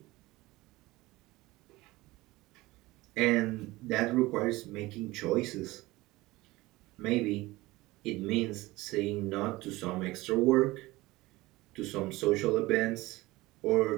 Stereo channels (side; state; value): left; quieter; 19.9 dB